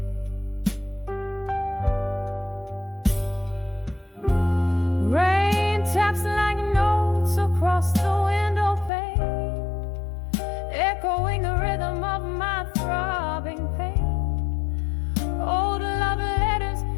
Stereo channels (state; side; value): drops out; right; at 8.9 s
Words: Rain taps like notes across the window pane, echoing the rhythm of my throbbing pain. Old love letters,